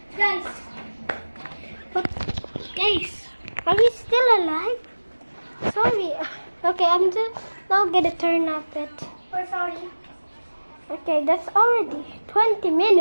Guys. Guys, are you still alive? Sorry. Okay, I'm just now gonna turn off it. We're sorry. Okay, that's already 20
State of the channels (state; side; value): inverted; both; correlation -1.00